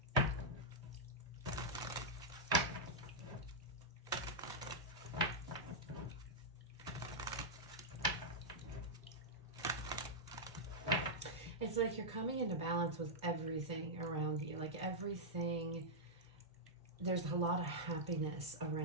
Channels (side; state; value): both; normal; correlation -0.07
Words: It's like you're coming into balance with everything around you. Like everything, there's a lot of happiness